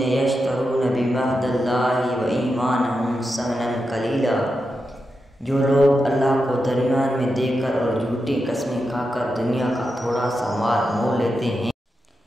یشترون بعہد اللہ وایمانہم ثمنا قلیلا۔ جو لوگ اللہ کو درمیان میں دے کر اور جھوٹی قسمیں کھا کر دنیا کا تھوڑا سا مال مول لیتے ہیں،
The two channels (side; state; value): both; normal; correlation 0.88